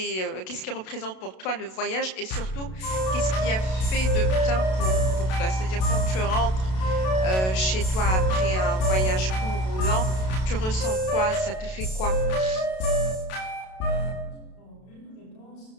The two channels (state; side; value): late; right; 32 ms